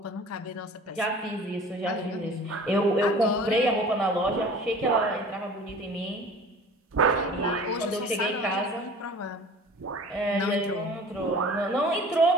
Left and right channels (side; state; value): both; normal; correlation 0.44